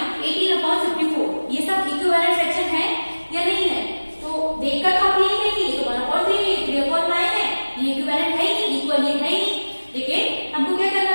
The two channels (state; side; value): inverted; both; correlation -1.00